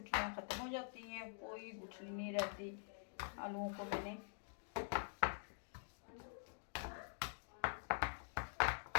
ख़त्म हो जाती हैं, कोई गुठली नहीं रहती। आलूओं को मैंने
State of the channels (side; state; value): right; silent; digital silence